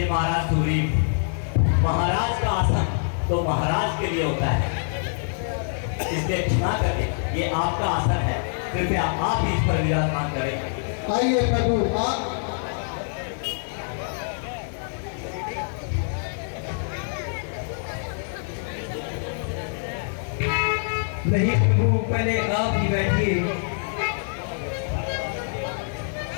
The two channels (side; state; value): right; silent; digital silence